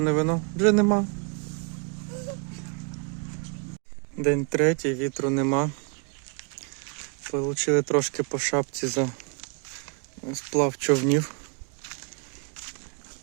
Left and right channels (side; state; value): left; quieter; 36.9 dB